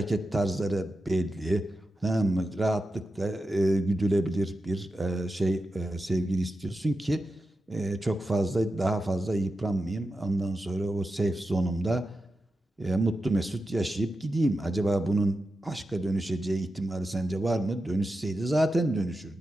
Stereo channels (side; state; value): both; normal; correlation 0.90